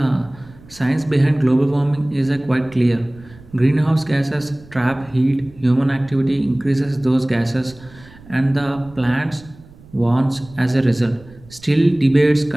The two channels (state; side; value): noise; right; rumble, 23 dB below the sound